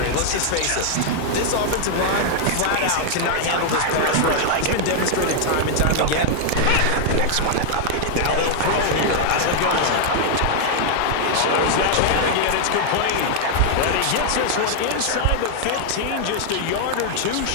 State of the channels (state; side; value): different; both; correlation -0.01